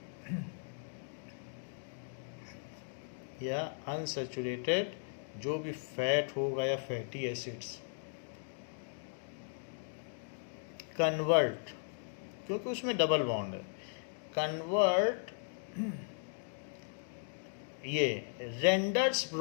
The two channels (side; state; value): right; silent; digital silence